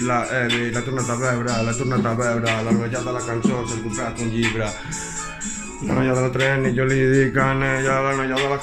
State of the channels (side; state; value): both; identical; correlation 1.00